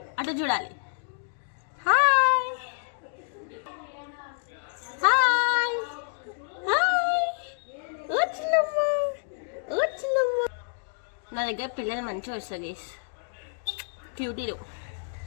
అటు చూడాలి. Hi hi hi. వచ్చినమ్మా. నా దగ్గర పిల్లలు మంచిగా వస్తుంది గైస్, క్యూటీలు.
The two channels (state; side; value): silent; right; digital silence